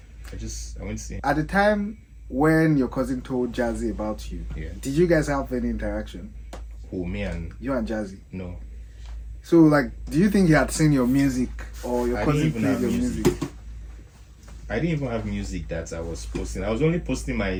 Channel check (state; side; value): identical; both; correlation 1.00